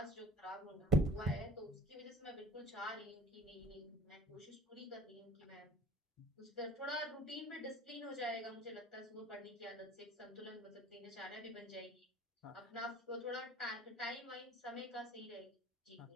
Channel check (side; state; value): both; normal; correlation 0.44